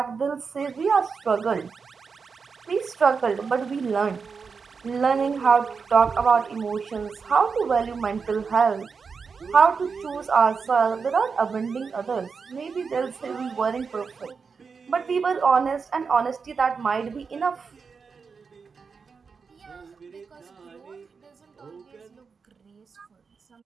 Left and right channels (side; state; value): left; quieter; 5.4 dB